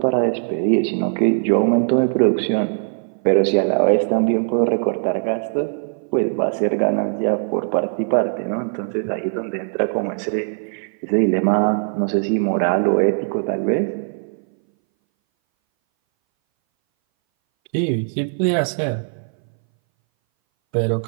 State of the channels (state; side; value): silent; left; 61 dB below the other